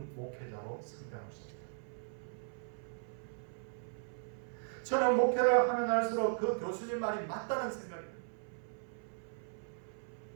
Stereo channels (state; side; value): silent; left; 53 dB below the other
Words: 목회자로 성장할 수 없다. 저는 목회를 하면 할수록 그 교수님 말이 맞다는 생각입니다.